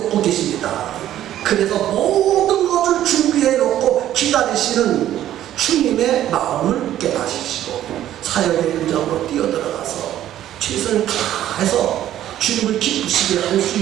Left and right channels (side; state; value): left; quieter; 12.3 dB